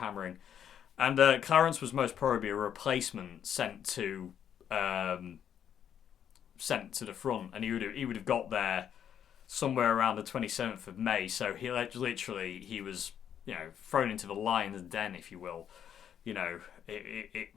And Clarence was most probably a replacement sent to the front, and he would have got there somewhere around the 27th of May. So he was thrown into the lion's den, if you will.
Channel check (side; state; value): right; quieter; 9.1 dB